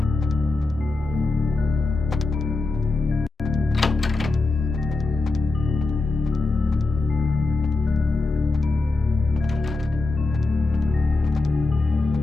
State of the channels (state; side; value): quieter; right; 3.4 dB